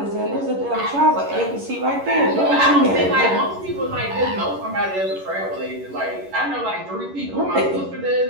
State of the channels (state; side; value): late; left; 11 ms